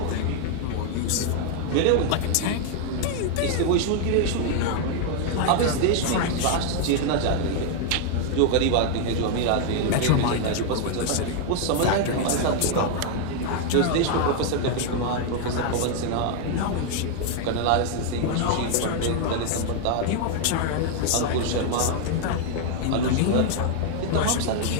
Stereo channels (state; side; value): different; both; correlation 0.00